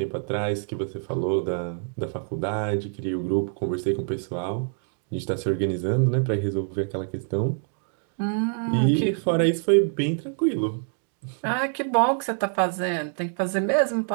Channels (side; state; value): left; silent; 61 dB below the other